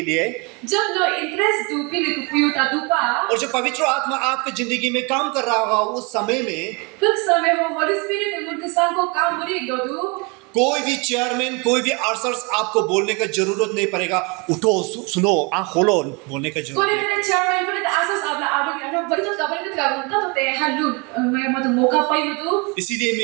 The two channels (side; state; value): left; quieter; 30.2 dB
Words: लिए जब नो इंटरेस्ट दो पिन को पुयो ता दुपा और जब पवित्र आत्मा आपकी जिंदगी में काम कर रहा होगा उस समय में कुछ समय हो होली स्पिरिट उनके संग को काम मुरी दो कोई भी चेयरमैन कोई भी आर्सर्स आपको बोलने का जरूरत नहीं पड़ेगा. उठो सुनो आँख खोलो बोलने का जरूरत कोने नहीं. ने चेयरमैन को तो आसस आपला आडो के बड़ी तो कबर का बनता तो ते हल्लू मैं मत मौका पाई मत इसीलिए